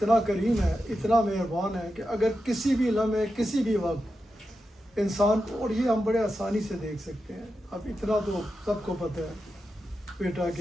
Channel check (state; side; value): normal; both; correlation 0.89